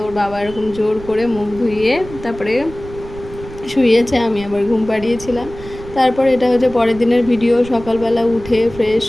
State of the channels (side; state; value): right; noise; rumble, 15 dB below the sound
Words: ওর বাবা এরকম জোর করে মুখ ধুইয়ে তারপরে শুয়েছে, আমি আবার ঘুম পাড়িয়েছিলাম। তারপর এটা হচ্ছে পরের দিনের ভিডিও। সকালবেলা উঠে ফ্রেশ